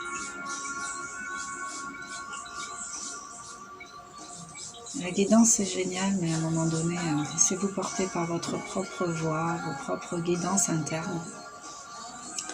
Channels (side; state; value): both; identical; correlation 1.00